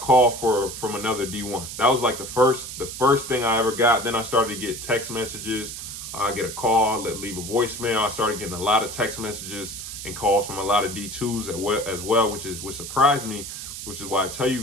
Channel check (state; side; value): noise; right; hiss, 9 dB below the sound